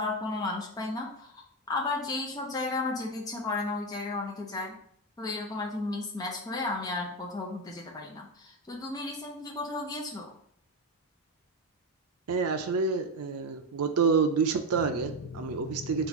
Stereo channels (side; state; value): both; normal; correlation 0.11